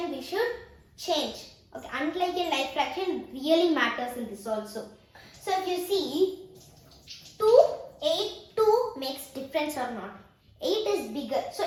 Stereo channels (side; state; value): both; identical; correlation 1.00